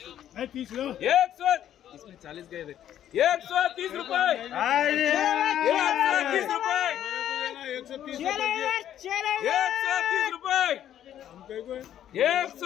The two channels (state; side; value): quieter; right; 10.9 dB